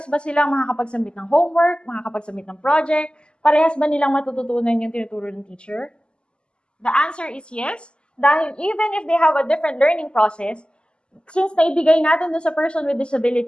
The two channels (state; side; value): late; right; 0.050 ms